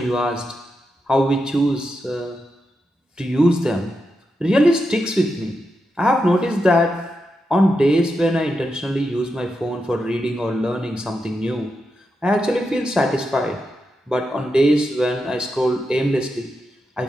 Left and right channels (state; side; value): normal; both; correlation 0.87